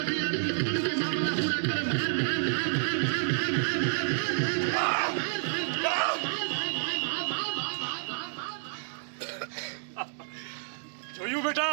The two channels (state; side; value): silent; left; digital silence